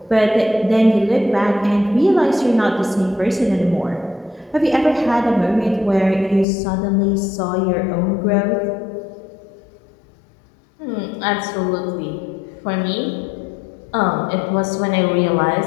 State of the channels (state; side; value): drops out; right; at 6.5 s